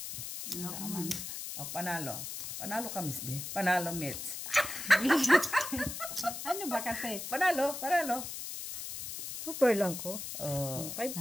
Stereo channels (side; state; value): left; noise; hiss, 7 dB below the sound